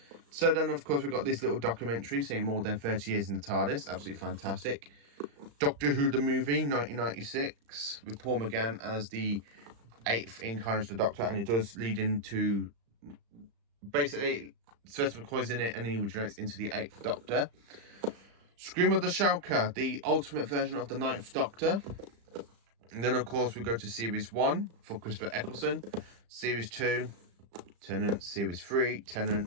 So then, of course, we've got this little documentary saying more than 30 years in the TARDIS. Absolutely fantastic. Doctor Who the Movie, 1996, with Paul McGann as the 8th incarnation of the Doctor. And it does lead into, basically, Sylvester McCoy's in it, and he regenerates into the 8th Doctor. Scream of the Shulker, the ultimate version of the 9th Doctor. And then, of course, we go to Series 1 for Christopher Eccleston. Series 2, Tennant. Series 3,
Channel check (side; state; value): left; late; 35 ms